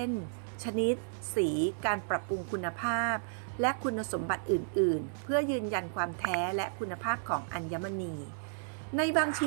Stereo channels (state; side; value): silent; left; digital silence